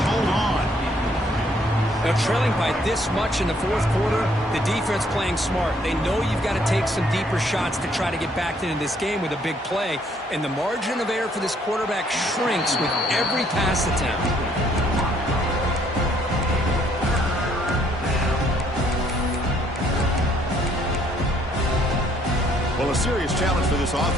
hold on. Now, trailing by this much in the fourth quarter, the defense playing smart. They know you've got to take some deeper shots to try to get back into this game with a big play, and the margin of error for this quarterback shrinks with every pass attempt. Well, a serious challenge for this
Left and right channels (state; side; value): normal; both; correlation 0.66